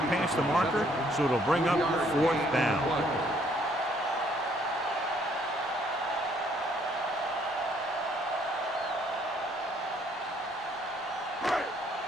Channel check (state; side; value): normal; both; correlation 0.65